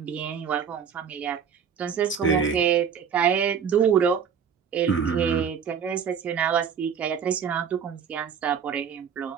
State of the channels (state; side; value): quieter; left; 7.3 dB